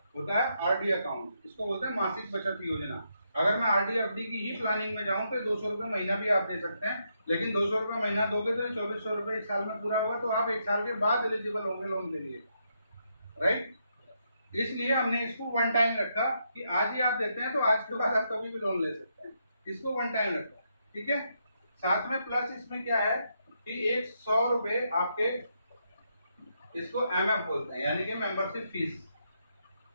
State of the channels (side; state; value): both; inverted; correlation -0.79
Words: होता है आरडी अकाउंट, इसको बोलते हैं मासिक बचत योजना। अगर मैं आरडी एफडी की ही प्लानिंग में जाऊं तो 200 रुपये महीना भी आप दे सकते हैं, लेकिन 200 रुपये महीना दोगे तो 2400 रुपये एक साल में पूरा होगा, तो आप एक साल के बाद एलिजिबल होंगे लोन के लिए, राइट। इसलिए हमने इसको वन टाइम रखा कि आज ही आप देते हैं तो आज के बाद आप कभी भी लोन ले सकते हैं, इसको वन टाइम रखा, ठीक है। साथ में प्लस इसमें क्या है कि एक 100 रुपये आपके, इसको एमएफ बोलते हैं, यानी कि मेंबरशिप फीस।